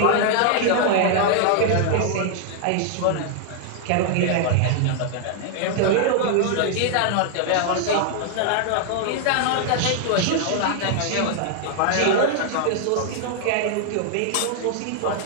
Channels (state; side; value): different; both; correlation 0.00